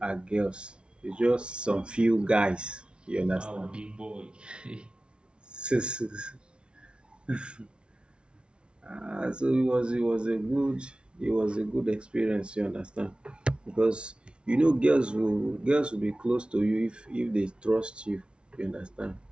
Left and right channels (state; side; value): late; left; 0.058 ms